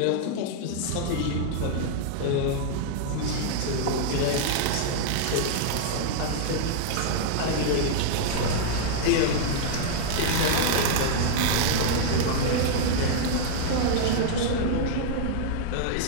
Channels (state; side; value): different; both; correlation -0.01